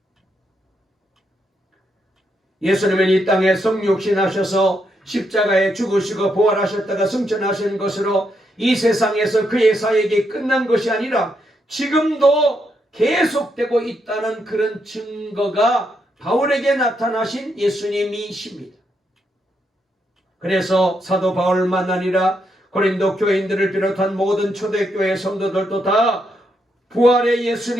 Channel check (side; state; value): both; normal; correlation 0.79